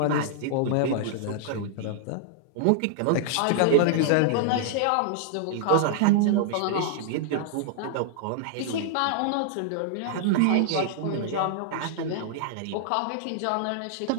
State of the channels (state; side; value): different; both; correlation -0.01